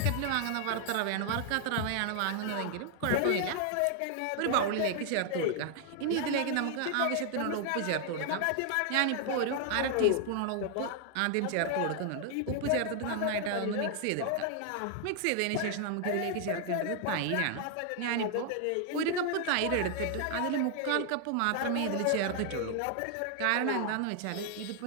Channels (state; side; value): different; both; correlation 0.00